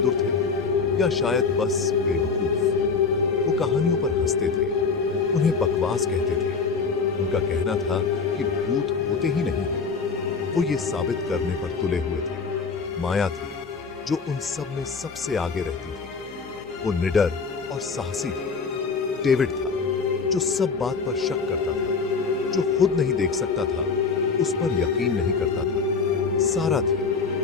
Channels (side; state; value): right; quieter; 5.0 dB